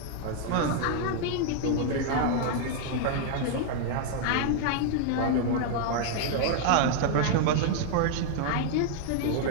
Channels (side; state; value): both; different; correlation 0.00